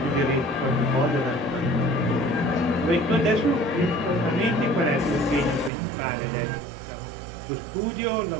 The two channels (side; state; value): left; drops out; at 5.7 s